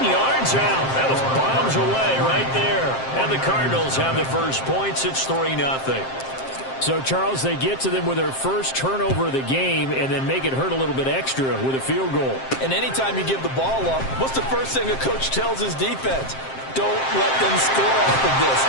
yards out. That was bombs away right there. And the Cardinals have the first points. It's 3-0. So, Charles, they get to them with their first turnover of the game and then make it hurt a little bit extra with a field goal. And anytime you give the ball up, what's the first thing a coach tells his defense? Don't let them score off of this.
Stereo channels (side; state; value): right; late; 7.6 ms